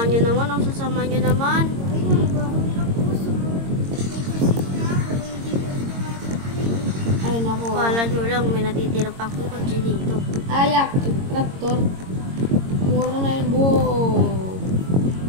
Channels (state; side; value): late; left; 22 ms